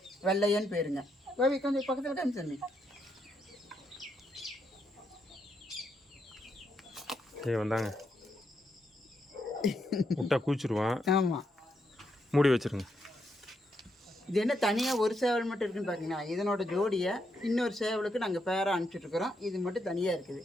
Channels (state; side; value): normal; both; correlation 0.79